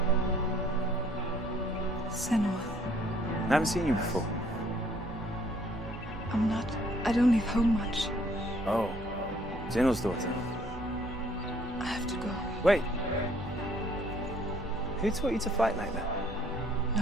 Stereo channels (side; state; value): both; normal; correlation 0.61